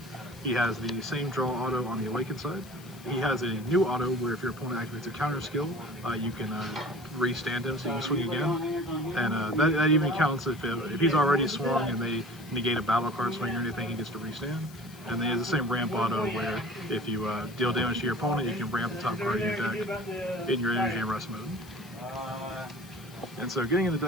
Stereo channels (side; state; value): left; noise; hiss, 21 dB below the sound